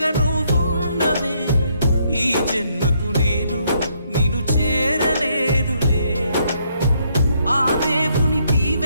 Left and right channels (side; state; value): both; inverted; correlation -0.72